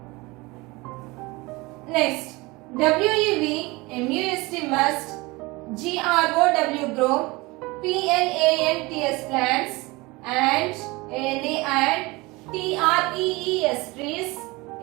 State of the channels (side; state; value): left; quieter; 23.3 dB